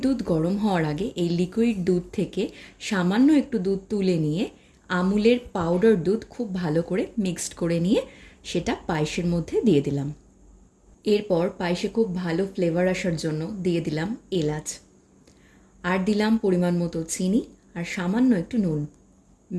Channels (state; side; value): identical; both; correlation 1.00